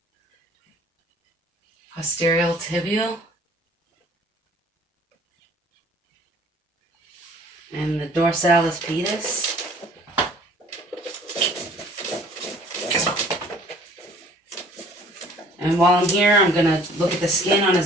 Posterior tibial. And the dorsalis pedis. And while I'm here, I'm going to look at the skin on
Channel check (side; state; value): both; normal; correlation 0.53